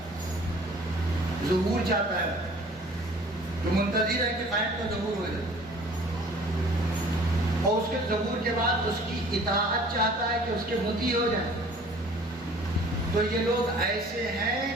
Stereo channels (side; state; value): both; normal; correlation 0.50